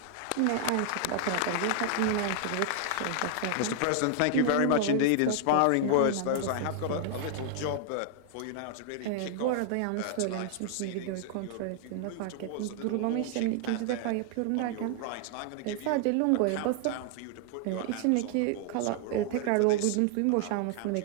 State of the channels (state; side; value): different; both; correlation 0.00